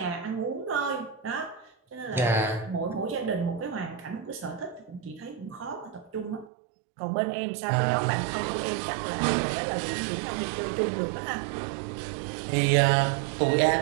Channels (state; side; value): drops out; left; at 6.5 s